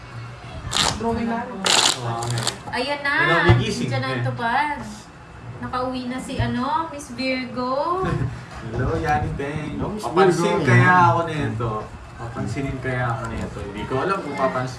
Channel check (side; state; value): both; identical; correlation 1.00